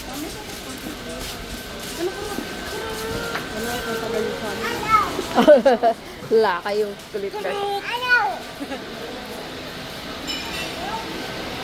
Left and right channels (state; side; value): identical; both; correlation 1.00